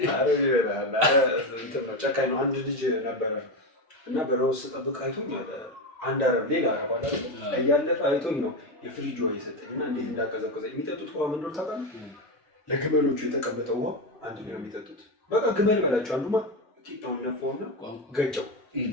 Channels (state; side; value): normal; both; correlation 0.14